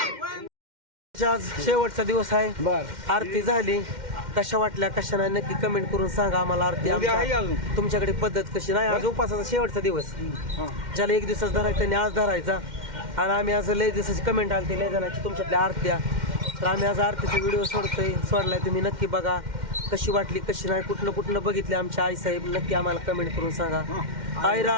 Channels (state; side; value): late; left; 2.1 ms